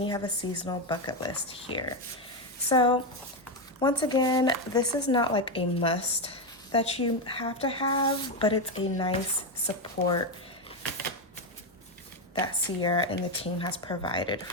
you have a seasonal bucket list here. So once again, this is not like a must that you have to have, but it's a nice support that Sierra and the team has provided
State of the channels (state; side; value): normal; both; correlation 0.08